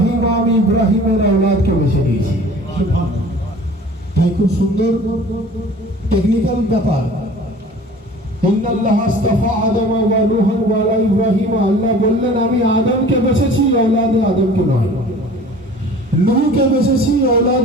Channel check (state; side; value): normal; both; correlation 0.45